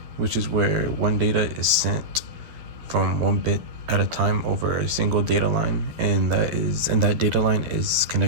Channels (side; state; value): left; late; 12 ms